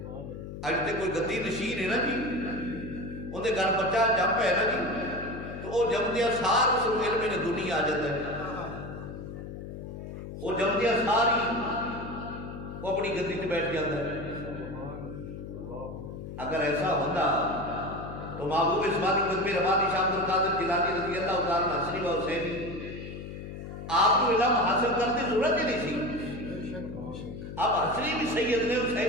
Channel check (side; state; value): left; noise; hum, 10 dB below the sound